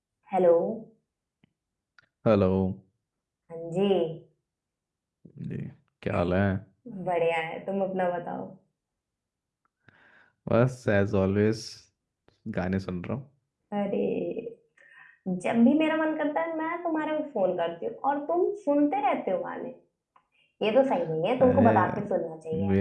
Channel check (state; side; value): identical; both; correlation 1.00